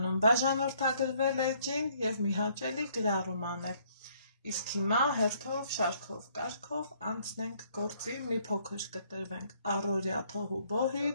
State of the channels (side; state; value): both; inverted; correlation -0.65